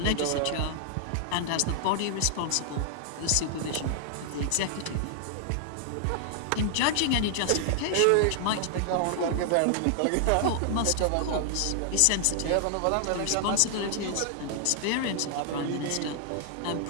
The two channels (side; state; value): both; different; correlation 0.00